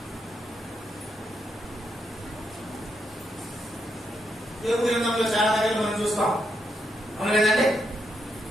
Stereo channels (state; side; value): normal; both; correlation 0.80